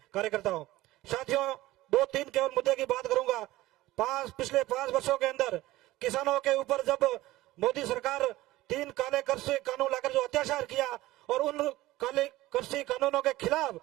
कार्यकर्ताओं, साथियों 2-3 केवल मुद्दे की बात करूंगा। पिछले 5 वर्षों के अंदर किसानों के ऊपर जब मोदी सरकार 3 काले कृषि कानून लाकर जो अत्याचार किया और उन काले कृषि कानूनों के खिलाफ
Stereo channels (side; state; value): left; quieter; 17.3 dB